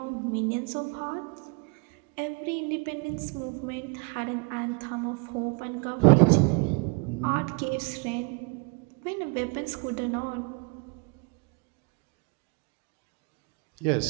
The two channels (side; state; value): left; quieter; 31.6 dB